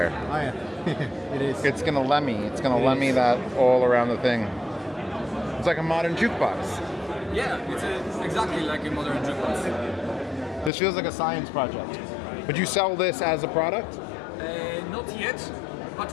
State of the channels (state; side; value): drops out; right; at 10.7 s